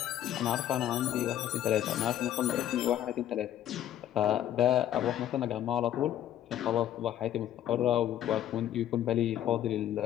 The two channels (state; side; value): quieter; right; 11.6 dB